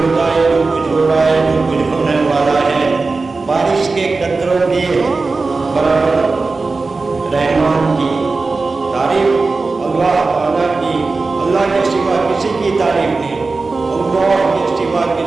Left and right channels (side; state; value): left; quieter; 3.9 dB